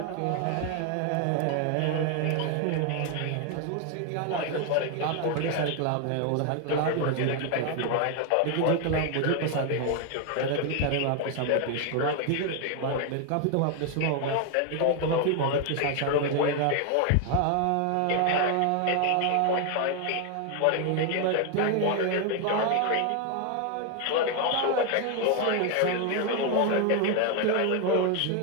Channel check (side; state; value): both; different; correlation 0.01